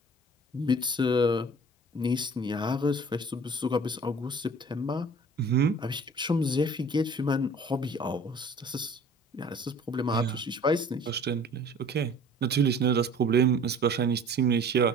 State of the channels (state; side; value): normal; both; correlation 0.48